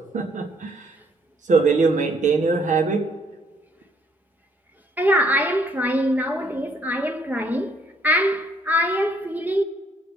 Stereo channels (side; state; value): both; normal; correlation 0.66